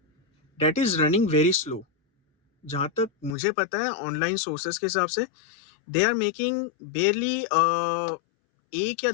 that is running very slow. जहाँ तक मुझे पता है ऑनलाइन सोर्सेस के हिसाब से दे आर मेकिंग बेयरली 1 या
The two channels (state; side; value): drops out; right; at 3.4 s